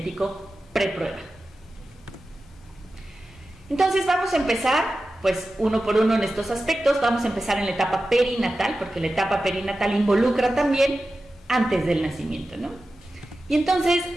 preprueba. Entonces vamos a empezar, pues uno por uno en estos aspectos. Vamos a empezar en la etapa perinatal, porque la etapa perinatal involucra también antes del nacimiento, ¿no? Y entonces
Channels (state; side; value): normal; both; correlation 0.93